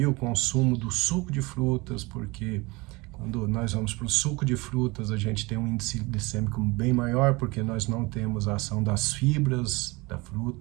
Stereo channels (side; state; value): left; quieter; 24.1 dB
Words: o consumo do suco de frutas, porque quando nós vamos para o suco de frutas, a gente tem um índice glicêmico bem maior, porque nós não temos a ação das fibras da